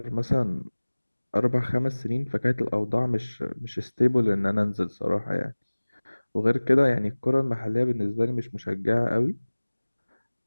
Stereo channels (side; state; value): both; inverted; correlation -1.00